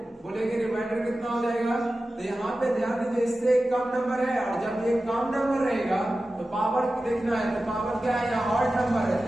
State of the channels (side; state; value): both; normal; correlation 0.94